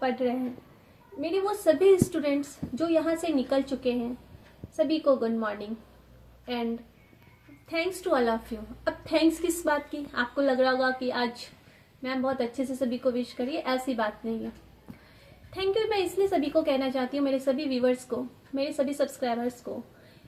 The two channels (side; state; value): both; identical; correlation 1.00